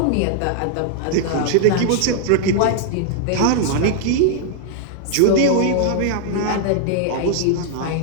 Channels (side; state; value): both; different; correlation -0.01